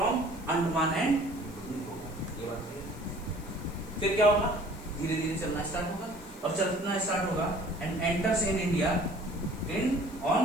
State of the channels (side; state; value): left; noise; hiss, 22 dB below the sound